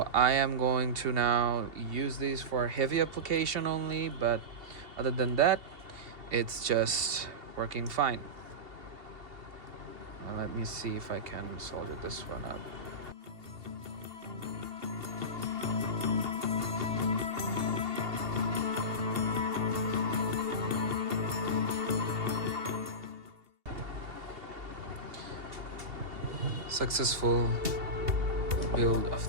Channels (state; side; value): late; left; 2.7 ms